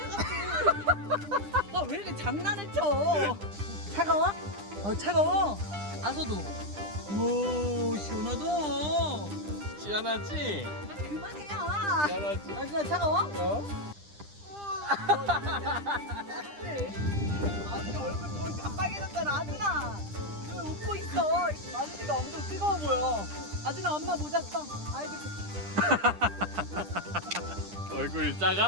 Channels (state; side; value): late; left; 10 ms